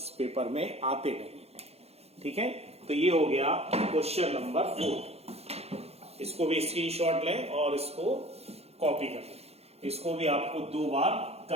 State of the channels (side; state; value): left; late; 0.30 ms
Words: पेपर में आते नहीं है। ठीक है, तो ये हो गया क्वेश्चन नंबर 4। इसको भी स्क्रीनशॉट लें और इसको कॉपी कर लें। इसको भी आपको 2 बार